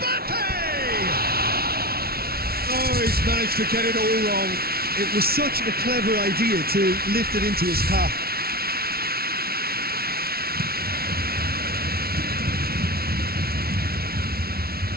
Oh, he's managed to get it all wrong. It was such a clever idea to lift it into his path.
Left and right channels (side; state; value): left; late; 0.44 ms